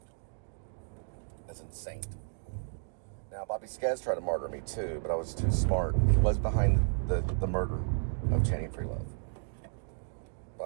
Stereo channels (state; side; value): silent; left; digital silence